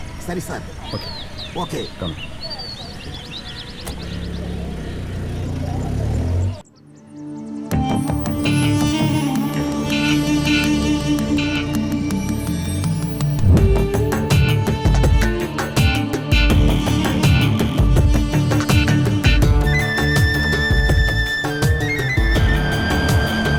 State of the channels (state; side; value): identical; both; correlation 1.00